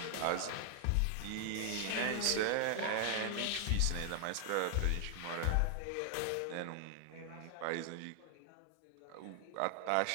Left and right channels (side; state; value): both; different; correlation 0.00